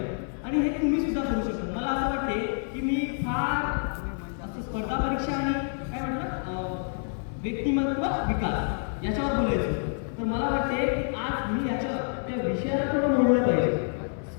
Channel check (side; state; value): right; silent; 59 dB below the other